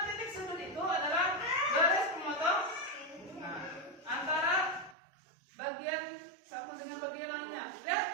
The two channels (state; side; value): drops out; left; at 5.0 s